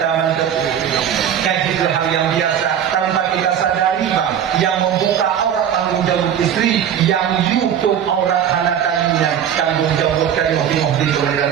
mantu. Itu hal yang biasa tanpa kita sadari bang, yang membuka aurat tanggung jawab istri, yang YouTube aurat anak taninya tanggung jawab dari mobil oleh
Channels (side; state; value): left; quieter; 9.2 dB